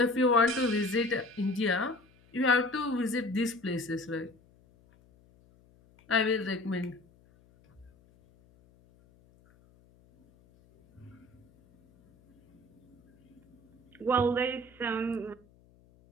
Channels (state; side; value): noise; left; hum, 30 dB below the sound